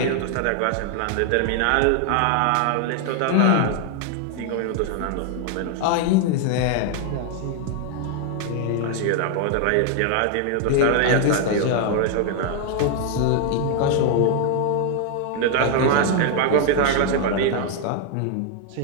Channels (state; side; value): different; both; correlation 0.00